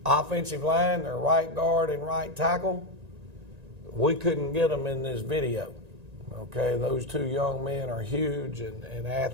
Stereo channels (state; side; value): late; left; 1.9 ms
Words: offensive line, their right guard and right tackle, we couldn't get them in this video. Okay, those 2 young men are huge and